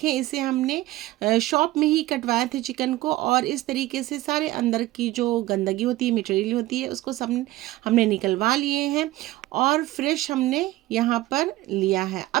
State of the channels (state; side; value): quieter; left; 17.2 dB